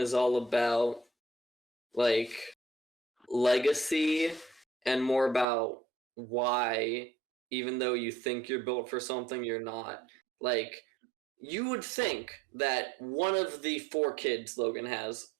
all about like legacy and more about why, even though you think you're built for something, you're not. Like, you would think that one of the four kids Logan has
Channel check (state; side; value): drops out; left; at 5.5 s